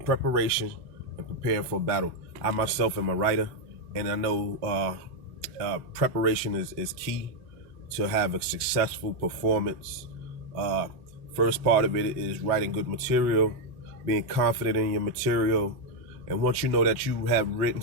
preparation and preparing for a battle. I myself am a writer, and I know preparation is key to have a successful performance. Uh, First part of it is writing good material, being confident in your material. And once you know that you have written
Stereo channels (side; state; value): left; late; 3.9 ms